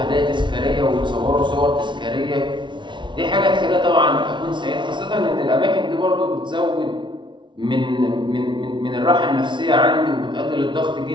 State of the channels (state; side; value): late; left; 0.23 ms